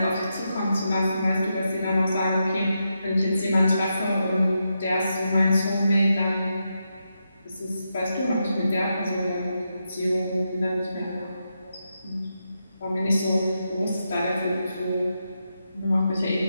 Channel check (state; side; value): inverted; both; correlation -0.85